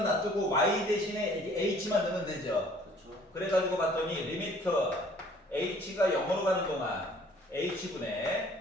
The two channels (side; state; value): both; normal; correlation 0.55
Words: 놔두고 y 대신에 이제 h만 넣으면 되죠. 그렇죠. 그래가지고 봤더니 리미트 h가 0으로 가는 동안 h분의